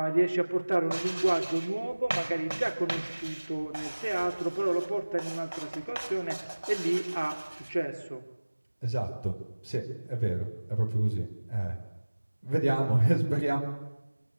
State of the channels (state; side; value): inverted; both; correlation -1.00